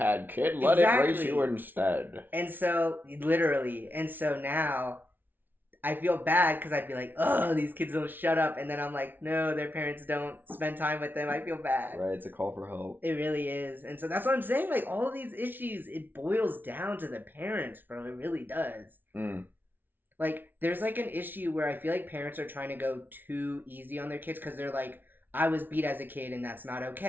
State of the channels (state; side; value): late; left; 0.092 ms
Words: kid. Let exactly. it race you instead. And so, literally. And so now, I feel bad because I'd be like, oh, these kids don't shut up. And then I'm like, no, their parents don't spend time with them. I feel bad. Right, it's a call for help. It really is. And so that's what I'm saying. Like, all of these issues, it boils down to the parents, bro. It really does. Like, there's, like, an issue where I feel like parents are trying to go too easy on their kids because they're like, I was beat as a kid and that's not